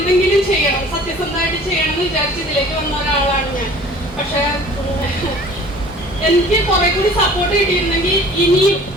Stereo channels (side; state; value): both; normal; correlation 0.48